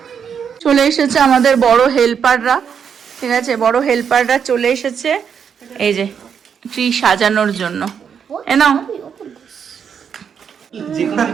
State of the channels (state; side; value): quieter; left; 7.3 dB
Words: চলে এসেছে আমাদের বড় হেল্পাররা। ঠিক আছে, বড় হেল্পাররা চলে এসেছে এই যে ট্রি সাজানোর জন্য। এ নাও।